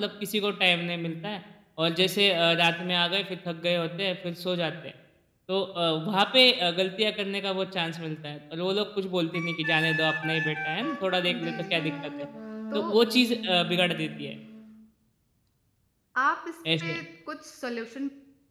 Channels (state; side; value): identical; both; correlation 1.00